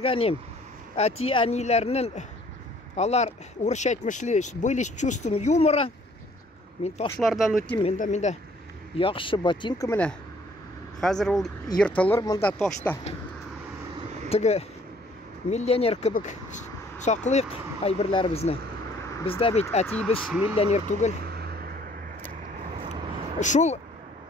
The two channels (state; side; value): normal; both; correlation 0.59